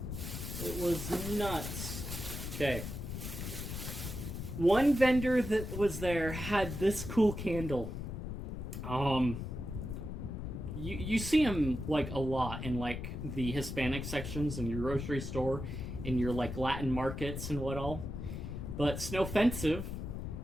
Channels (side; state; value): left; noise; rumble, 6 dB below the sound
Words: It was nuts. Okay. One vendor that was there had this cool candle. You see them like a lot in like the Hispanic sections in your grocery store, in your like Latin markets and what all. But Snowfensive